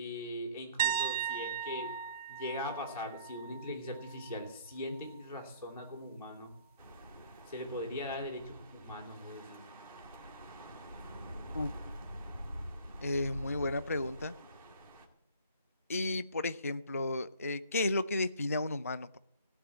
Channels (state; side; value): inverted; both; correlation -0.58